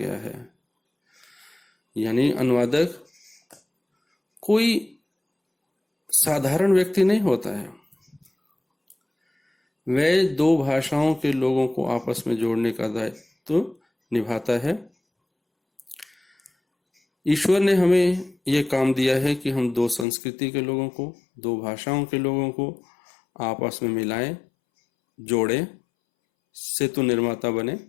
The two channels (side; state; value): right; drops out; at 20.1 s